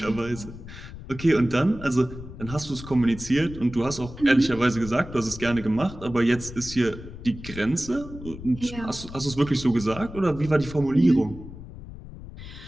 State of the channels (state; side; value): noise; left; rumble, 13 dB below the sound